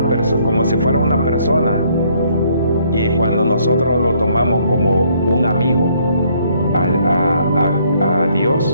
persona, como si fuera una persona. Y cuando nosotros lo tomamos como un amigo a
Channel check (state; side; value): inverted; both; correlation -0.67